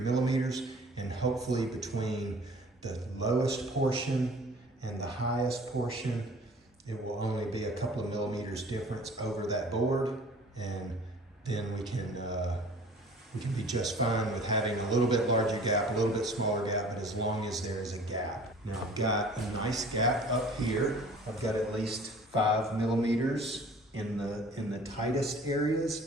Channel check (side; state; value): both; normal; correlation 0.48